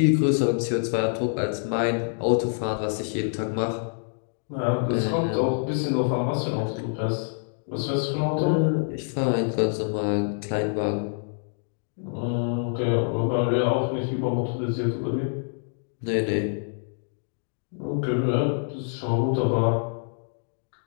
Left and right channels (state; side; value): silent; right; digital silence